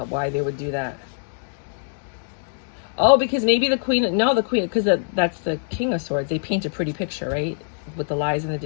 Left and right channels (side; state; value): right; silent; digital silence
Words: why they would do that. Oh, because maybe the queen, because that's the King of Swords. They paint a pretty picture, right? With the lies and the